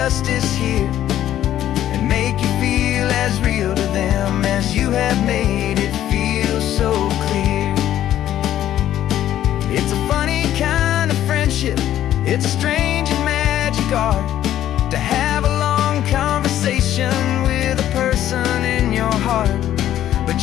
here, and make you feel as real to them as you have made it feel so clear. It's a funny kind of friendship, it's a strange and magic art to have a long conversation with a person in your heart. But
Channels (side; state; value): right; quieter; 12.1 dB